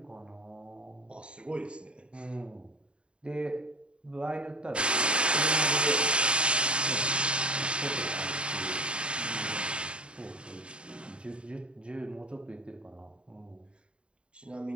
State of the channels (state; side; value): late; left; 0.055 ms